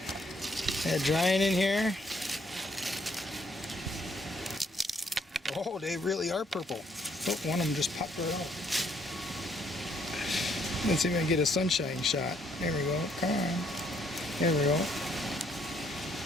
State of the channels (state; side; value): normal; both; correlation 0.68